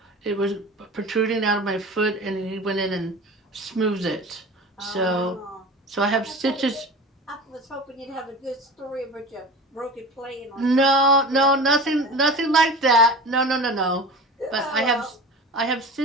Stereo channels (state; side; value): normal; both; correlation 0.35